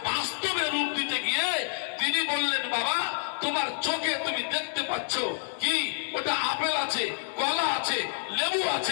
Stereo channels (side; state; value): right; silent; 59 dB below the other